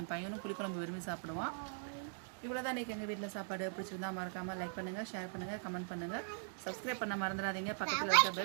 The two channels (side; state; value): left; silent; digital silence